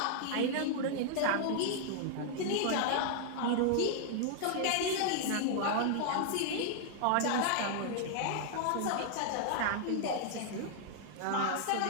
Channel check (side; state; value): both; different; correlation 0.00